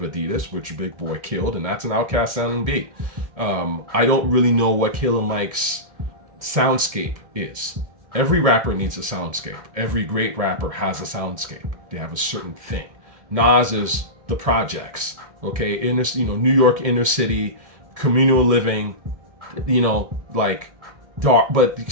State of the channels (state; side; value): late; left; 2.1 ms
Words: A.D.I.D.A.S, which Big Boy killed, and that's an Outkast sounding beat. I don't really know what Killer Mike's soundscape is. Every rapper needs a soundscape. Every great rapper has a soundscape. They have a certain thing. Nas is the projects, okay? New York inner city, communal living, dark, but